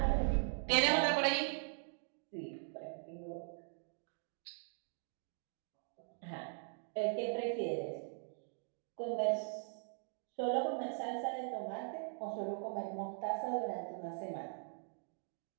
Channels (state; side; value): silent; left; digital silence